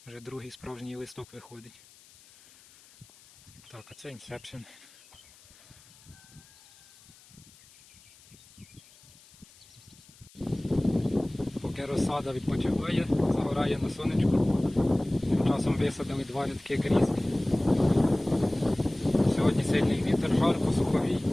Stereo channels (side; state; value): left; noise; hiss, 25 dB below the sound